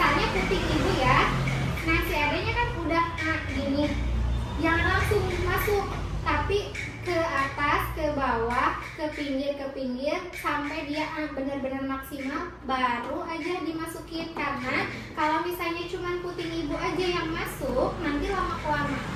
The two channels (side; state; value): both; identical; correlation 1.00